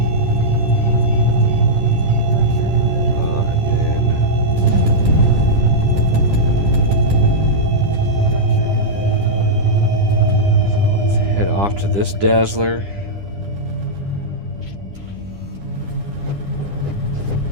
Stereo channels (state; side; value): late; left; 10 ms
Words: Off to this dazzler.